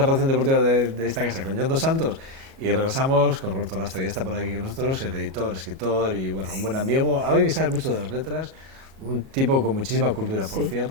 redacción deportiva de esta casa, con John Dos Santos, y regresamos con Roberto Lastra, ya está por aquí con nosotros, el editor, escritor y bueno, un buen amigo, alguien que sabe mucho de las letras, un tipo con muchísima cultura, por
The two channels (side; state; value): left; late; 37 ms